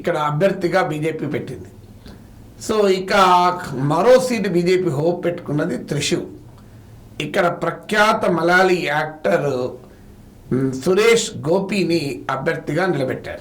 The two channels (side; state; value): both; identical; correlation 1.00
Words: అభ్యర్థిగా బీజేపీ పెట్టింది. సో ఇక మరో సీటు బీజేపీ హోప్ పెట్టుకున్నది త్రిశూర్. ఇక్కడ ప్రఖ్యాత మలయాళీ యాక్టర్ సురేష్ గోపిని అభ్యర్థిగా